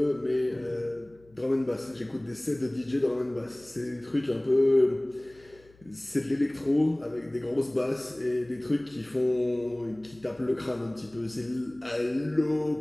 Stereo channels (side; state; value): left; noise; hum, 28 dB below the sound